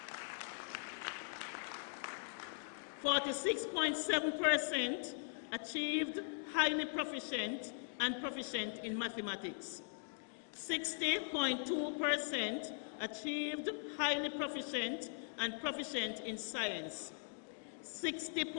.7% achieved highly proficient and proficient in mathematics. 60.2% achieved highly proficient and proficient in science.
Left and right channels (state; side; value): silent; right; digital silence